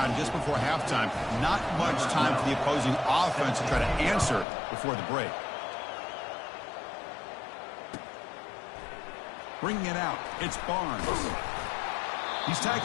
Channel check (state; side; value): drops out; right; at 4.5 s